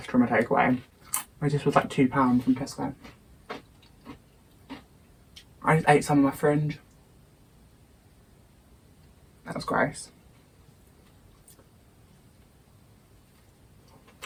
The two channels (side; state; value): both; identical; correlation 1.00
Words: from a takeaway. This was like £2 from Tesco. I just ate some of my fringe. That was gross.